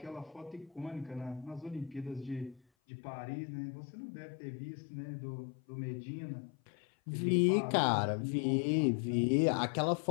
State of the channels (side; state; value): right; drops out; at 2.6 s